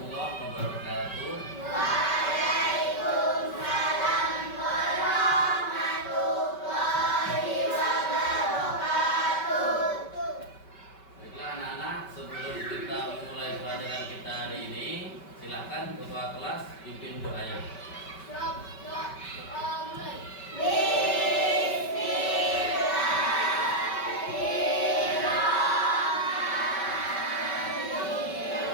wabarakatuh. Waalaikumsalam warahmatullahi wabarakatuh. Baiklah anak-anak, sebelum kita mulai pelajaran kita hari ini, silakan ketua kelas pimpin doanya.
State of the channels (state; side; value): late; right; 5.2 ms